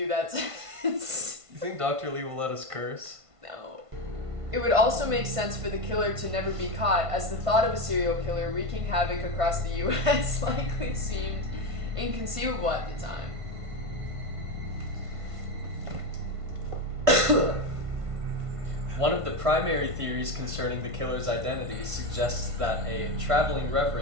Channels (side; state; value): left; late; 1.5 ms